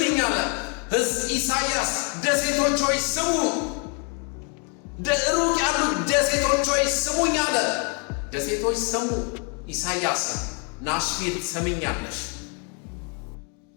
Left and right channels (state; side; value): quieter; right; 37.5 dB